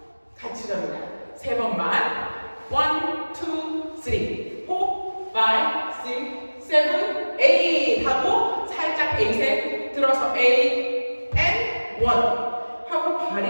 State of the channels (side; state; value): both; inverted; correlation -1.00